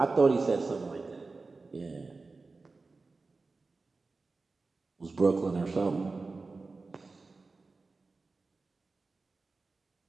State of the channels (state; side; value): quieter; left; 3.8 dB